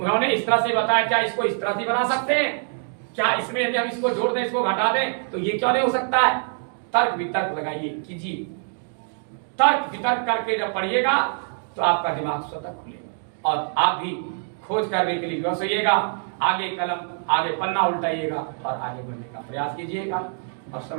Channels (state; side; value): silent; left; 62 dB below the other